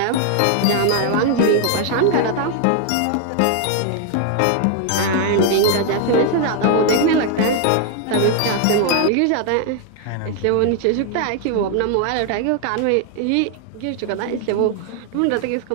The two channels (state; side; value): different; both; correlation 0.00